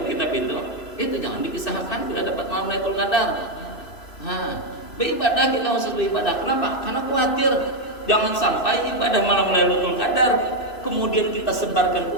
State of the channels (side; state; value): right; late; 3.0 ms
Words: itu jangan dikisahkan bila dapat malam Lailatul Qadar. Nah, beribadah kita khusus beribadah. Kenapa? Karena khawatir jangan sampai ibadah malam Lailatul Qadar kemudian kita sebarkan ke